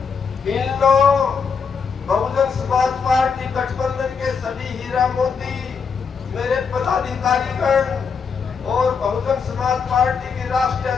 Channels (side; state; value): right; quieter; 5.8 dB